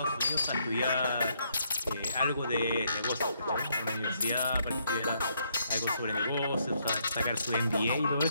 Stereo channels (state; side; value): inverted; both; correlation -0.73